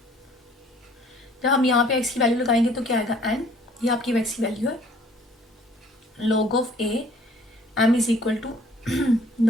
जब हम यहाँ पे एक्स की वैल्यू लगाएंगे तो क्या आएगा, एन, ये आपकी एक्स की वैल्यू है। log of A M is equal to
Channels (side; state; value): both; normal; correlation 0.57